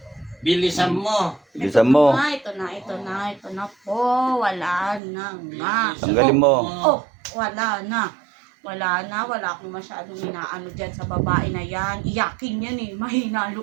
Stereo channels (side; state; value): left; drops out; at 5.0 s